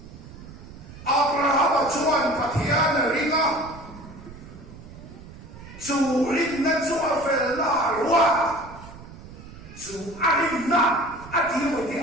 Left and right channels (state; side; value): noise; right; rumble, 16 dB below the sound